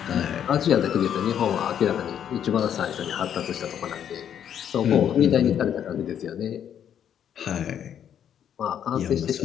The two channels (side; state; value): right; quieter; 9.3 dB